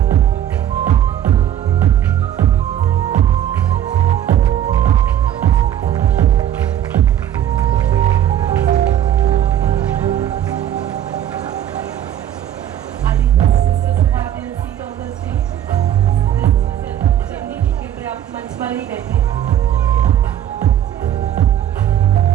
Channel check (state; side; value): quieter; left; 10.9 dB